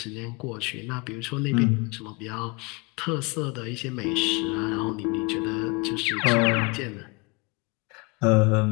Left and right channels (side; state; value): right; quieter; 28.8 dB